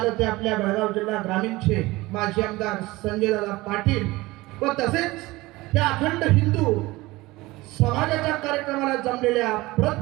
ते आपल्या बेळगाव जिल्हा ग्रामीणचे माजी आमदार संजय दादा पाटील व तसेच या अखंड हिंदू समाजाच्या कार्यक्रमाला जमलेल्या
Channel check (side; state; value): left; quieter; 20.2 dB